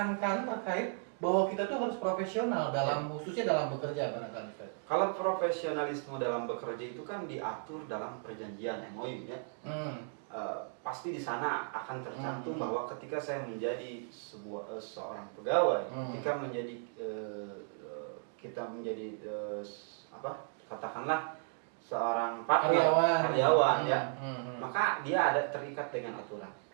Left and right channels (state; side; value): silent; left; 54 dB below the other